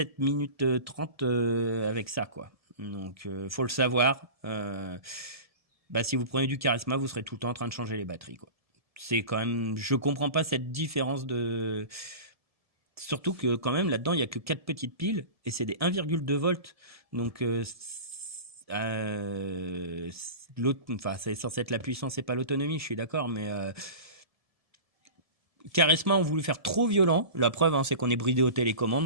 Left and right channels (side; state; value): left; late; 1.7 ms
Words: minutes 30 avec ça, quoi. Donc faut le savoir. Bah, si vous prenez du charisma, vous serez tout le temps en train de changer les batteries, quoi. C'est quand même, je comprends pas cette différence de. Surtout que quand même là-dedans, il y a que 4 petites piles et c'est des 1,2 volts. Donc l'autre, enfin, c'est censé être la puissance et pas l'autonomie, je suis d'accord, mais Charisma ont voulu faire trop violent. La preuve, hein, c'est qu'on est bridé aux